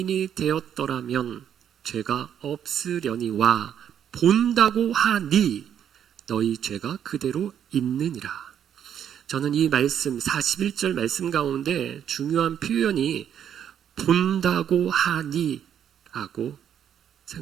되었더라면 죄가 없으려니와 본다고 하니 너희 죄가 그대로 있느니라. 저는 이 말씀 41절 말씀 가운데 중요한 표현이 본다고 하니 라고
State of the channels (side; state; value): left; quieter; 9.2 dB